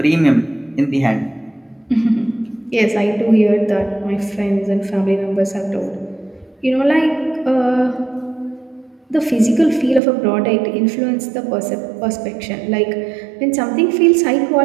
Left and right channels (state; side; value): drops out; left; at 10.0 s